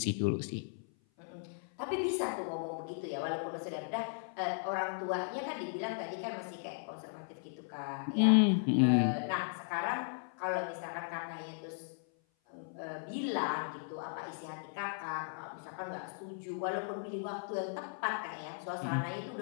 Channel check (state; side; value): silent; right; 53 dB below the other